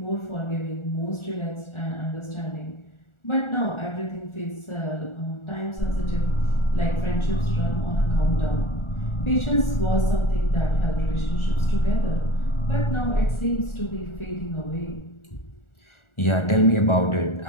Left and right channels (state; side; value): late; right; 1.4 ms